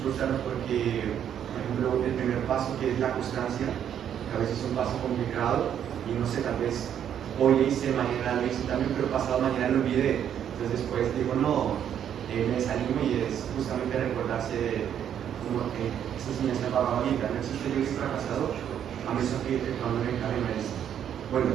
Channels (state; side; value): quieter; left; 9.4 dB